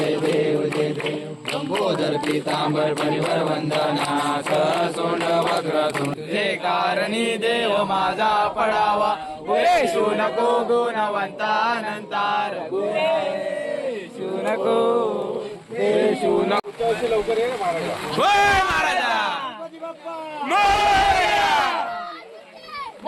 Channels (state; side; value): identical; both; correlation 1.00